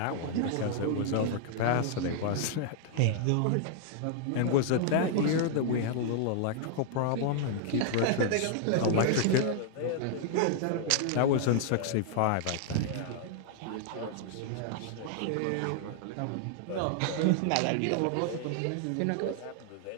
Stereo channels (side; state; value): both; different; correlation 0.00